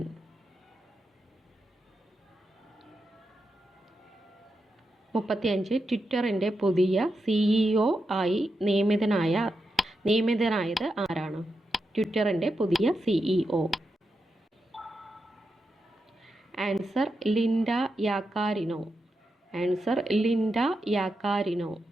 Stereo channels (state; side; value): normal; both; correlation 0.87